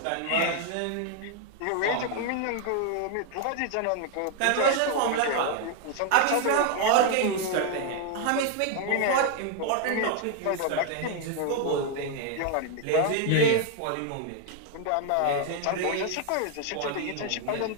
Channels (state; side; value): different; both; correlation 0.00